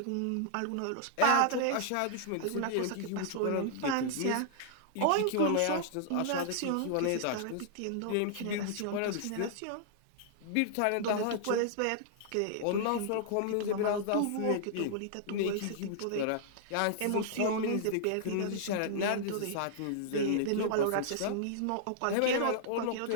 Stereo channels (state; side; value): different; both; correlation -0.01